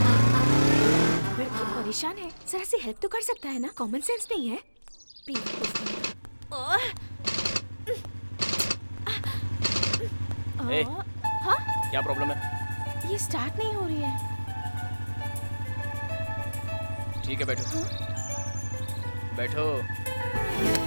लड़की परेशान है, जरा सी हेल्प तो कर सकता है ना? कॉमन सेंस नहीं है? ए, हाँ? क्या प्रॉब्लम है? ये स्टार्ट नहीं हो रही है। ठीक है, बैठो। बैठो।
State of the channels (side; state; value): both; inverted; correlation -1.00